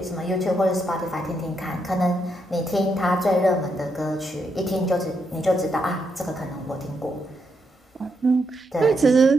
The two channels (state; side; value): normal; both; correlation 0.80